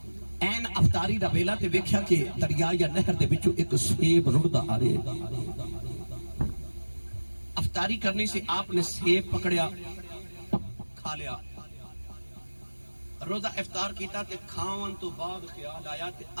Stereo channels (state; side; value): inverted; both; correlation -1.00